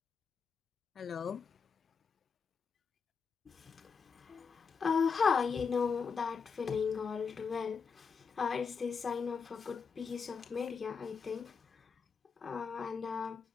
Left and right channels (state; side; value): quieter; right; 5.7 dB